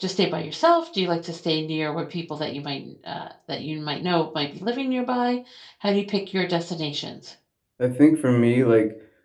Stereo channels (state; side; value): identical; both; correlation 1.00